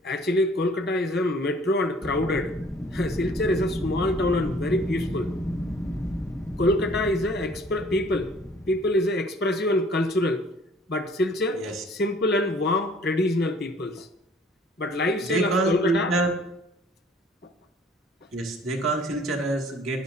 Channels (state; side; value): normal; both; correlation 0.55